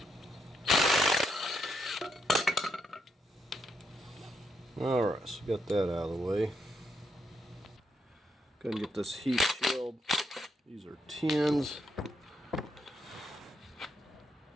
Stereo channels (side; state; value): both; normal; correlation 0.79